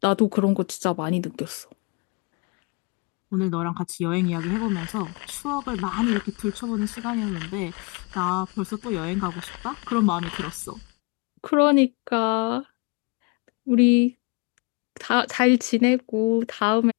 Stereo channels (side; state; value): right; quieter; 30.3 dB